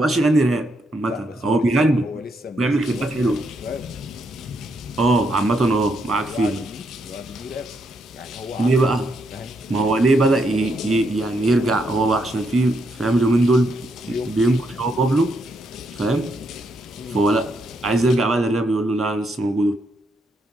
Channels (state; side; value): normal; both; correlation 0.77